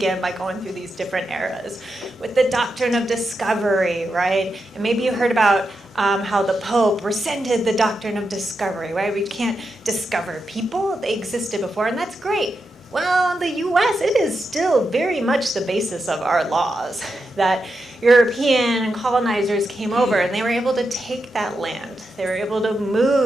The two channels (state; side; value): normal; both; correlation 0.87